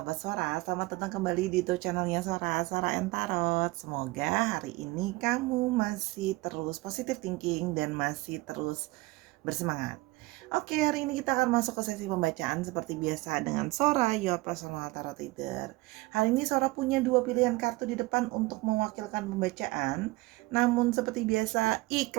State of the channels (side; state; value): left; quieter; 21.6 dB